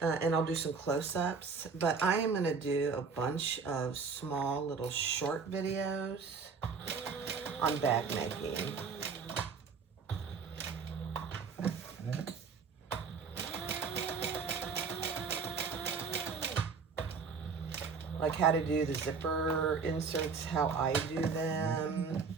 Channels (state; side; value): quieter; left; 5.2 dB